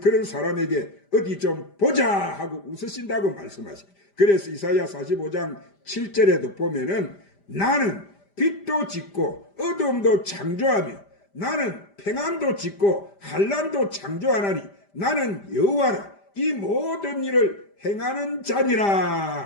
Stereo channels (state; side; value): late; right; 5.0 ms